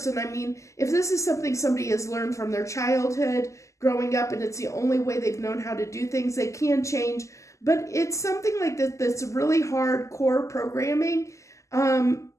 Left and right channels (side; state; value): right; late; 0.15 ms